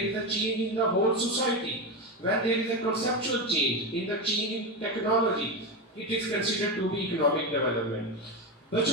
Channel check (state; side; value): normal; both; correlation 0.15